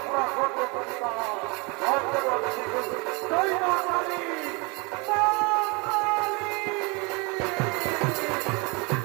করতে পারতাম আজীবন শিশু জয় মা কালী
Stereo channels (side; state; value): left; quieter; 29.2 dB